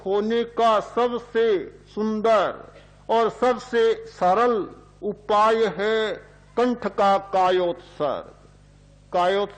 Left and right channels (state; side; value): identical; both; correlation 1.00